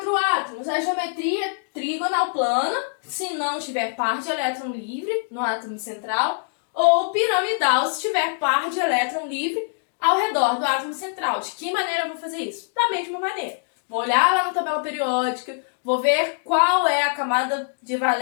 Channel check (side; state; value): right; silent; digital silence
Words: átomos. A geometria trigonal plana, se não tiver par de elétron livre no átomo central, ou piramidal, se tiver par de elétron livre ao redor do átomo central. De que maneira eu vou fazer isso? Da mesma maneira. Vou olhar lá na tabela periódica, vou ver qual é a camada de